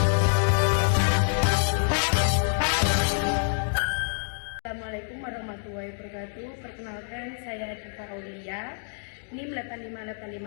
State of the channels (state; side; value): silent; right; digital silence